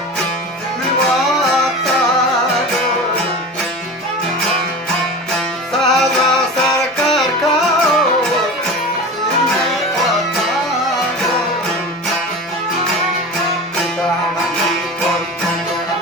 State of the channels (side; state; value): both; normal; correlation 0.31